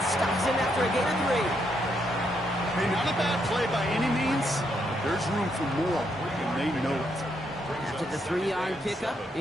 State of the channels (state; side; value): normal; both; correlation 0.77